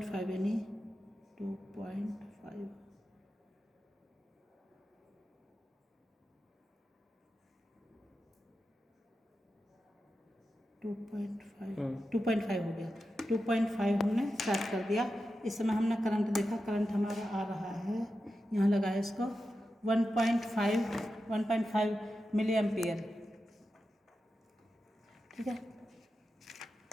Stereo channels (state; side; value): normal; both; correlation 0.91